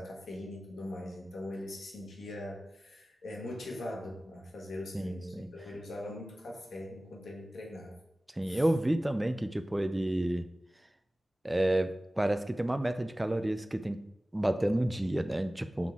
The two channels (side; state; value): both; normal; correlation 0.97